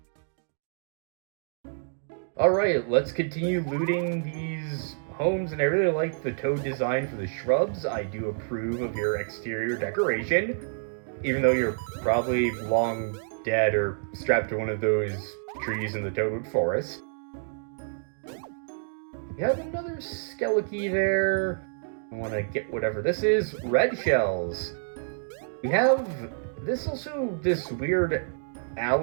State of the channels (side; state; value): left; silent; digital silence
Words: Alright, let's continue looting these homes, and I really like the toad design for the shrubs. I do approve of your exterior decoration, even though you're probably long dead or strapped to one of those trees in the Toadwood Forest. We have another Skeliki there. I want to get whatever this is. Red shells. We have this weird